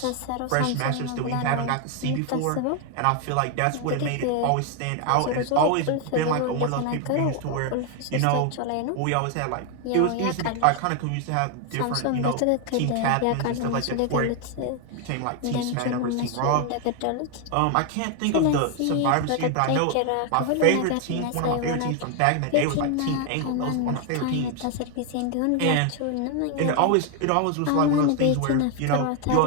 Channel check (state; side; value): different; both; correlation 0.01